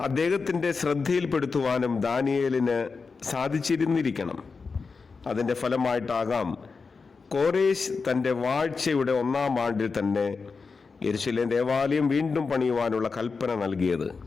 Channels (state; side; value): quieter; right; 4.7 dB